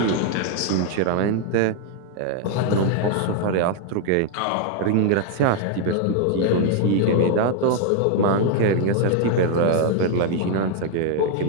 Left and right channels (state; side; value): different; both; correlation 0.01